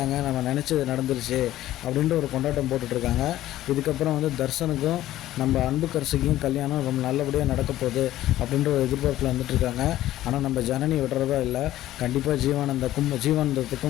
நம்ம நினச்சது நடந்துருச்சு அப்படின்ற ஒரு கொண்டாட்டம் போட்டுட்ருக்காங்க. இதுக்கப்புறம் வந்து தர்ஷனுக்கும் நம்ம அன்புக்கரசிக்கும் கல்யாணம் ரொம்ப நல்லபடியாக நடக்க போகுது அப்படின்ற ஒரு எதிர்பார்ப்பில் வந்துட்டுருக்காங்க. ஆனால் நம்ம ஜனனி விடுறதா இல்லை. கண்டிப்பாக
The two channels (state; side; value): quieter; right; 14.2 dB